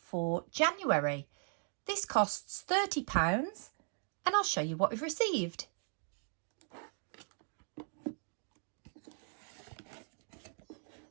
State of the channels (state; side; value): silent; left; 52 dB below the other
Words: January. This costs £30 and I'll show you what we've received.